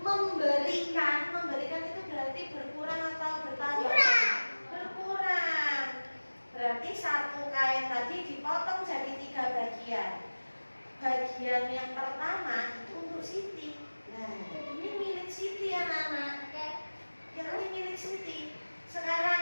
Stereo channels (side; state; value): both; inverted; correlation -1.00